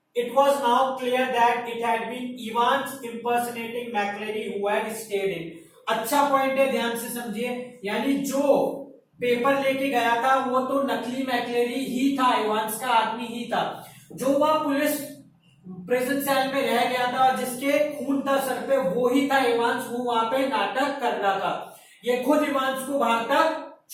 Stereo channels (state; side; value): identical; both; correlation 1.00